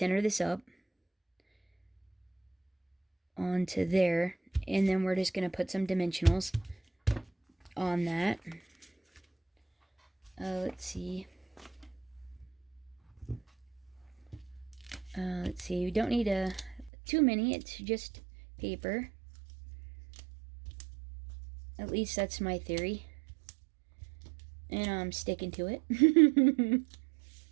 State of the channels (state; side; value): drops out; left; at 16.9 s